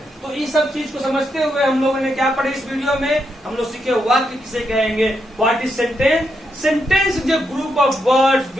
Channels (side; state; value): both; normal; correlation 0.81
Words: तो इस सब चीज को समझते हुए हम लोगों ने क्या पढ़े इस वीडियो में, हम लोग सीखे वाक्य किसे कहेंगे, what is sentence. Sentence is a group of words